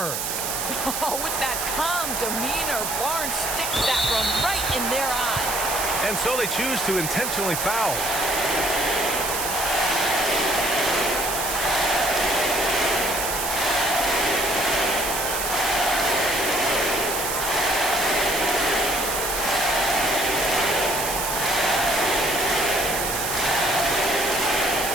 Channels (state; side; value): noise; right; hiss, 3 dB below the sound